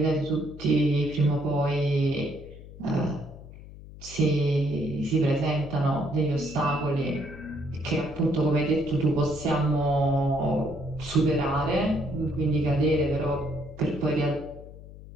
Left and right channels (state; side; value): noise; left; hum, 16 dB below the sound